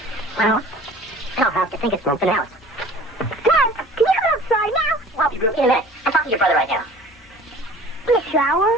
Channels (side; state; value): both; normal; correlation 0.46